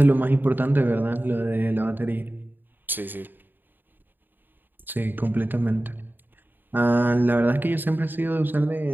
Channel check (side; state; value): left; late; 0.092 ms